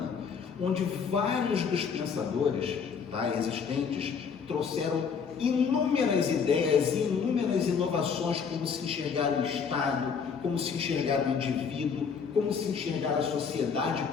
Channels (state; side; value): quieter; right; 6.2 dB